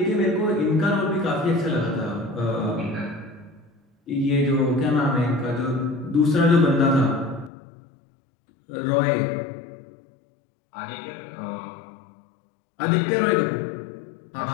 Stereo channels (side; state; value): right; drops out; at 7.5 s